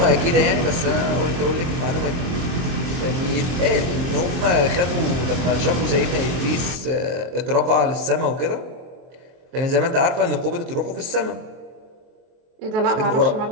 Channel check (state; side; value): late; left; 23 ms